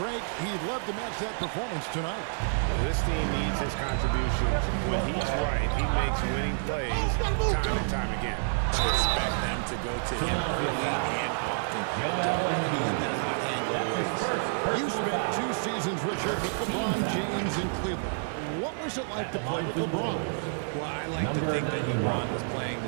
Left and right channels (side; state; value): left; silent; digital silence